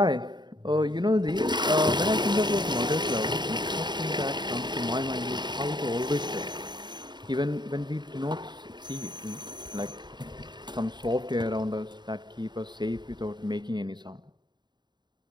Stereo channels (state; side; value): late; left; 0.21 ms